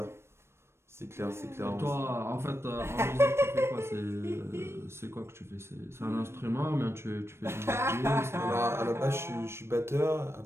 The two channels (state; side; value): late; left; 0.12 ms